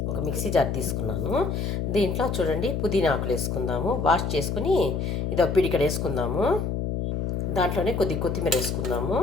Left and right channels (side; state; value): left; noise; hum, 1 dB below the sound